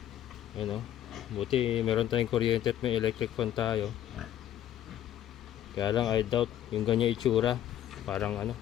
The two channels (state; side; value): quieter; right; 11.5 dB